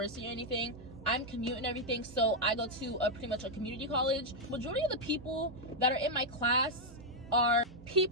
or anything. I'm commuting and everything, so I go to pretty much a community college. Majority of the people that are in my class are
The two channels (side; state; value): both; normal; correlation -0.01